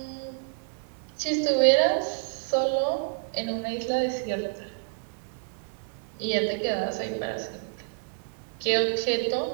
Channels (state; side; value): silent; left; digital silence